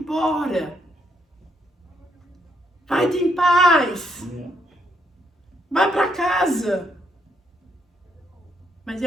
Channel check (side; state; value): both; normal; correlation 0.74